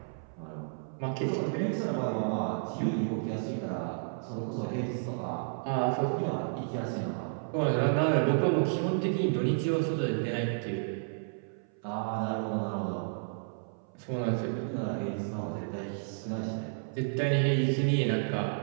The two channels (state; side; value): silent; left; 57 dB below the other